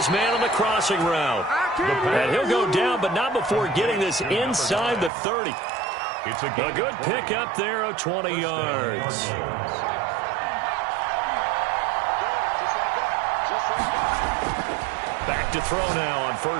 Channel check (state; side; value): drops out; left; at 5.1 s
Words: man on the crossing route. And he'll go down, but not before getting this inside the 30. It's a good pickup there of 20 yards. Back to throw now on